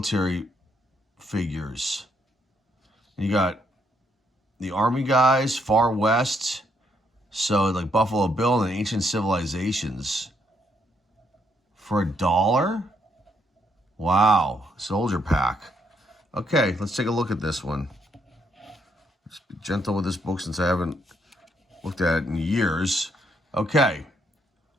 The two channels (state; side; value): normal; both; correlation 0.73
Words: figures. You got the Army guys, Far West. So like Buffalo Bill and Ancient Civilizations for $1. Wow, soldier pack. Okay, let's take a look at this one. Let's be gentle with this book since I haven't looked at it in years. Okay,